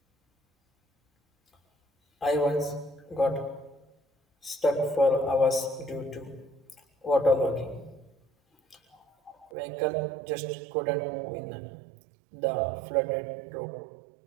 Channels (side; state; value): left; drops out; at 9.5 s